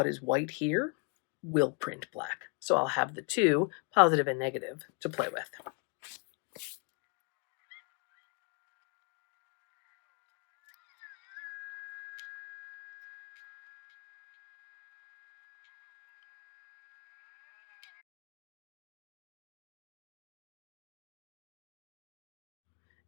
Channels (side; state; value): right; quieter; 35.0 dB